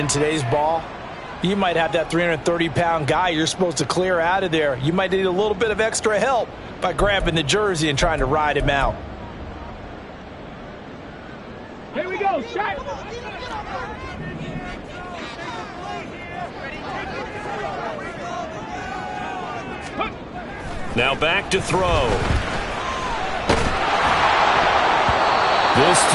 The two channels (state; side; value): identical; both; correlation 1.00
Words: today's ball, you might have that 330-pound guy you're supposed to clear out of there. You might need a little bit of extra help by grabbing the jersey and trying to ride him out. Here we go, shot. Now back to throw. This